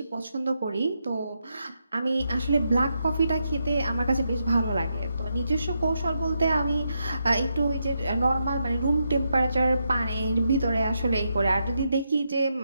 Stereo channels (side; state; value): both; inverted; correlation -0.82